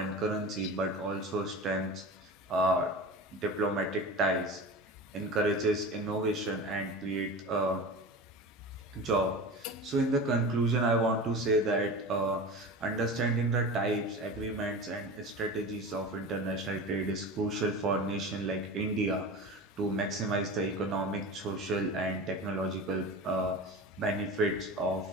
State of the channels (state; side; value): normal; both; correlation 0.31